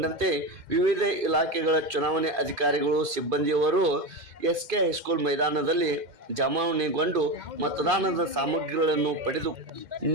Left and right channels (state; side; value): late; left; 2.5 ms